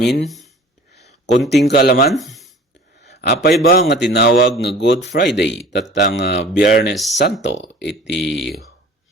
Konting kalaman. Apay ba nga tinawag nga Good Friday tatang Biyernes Santo iti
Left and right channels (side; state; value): both; normal; correlation 0.45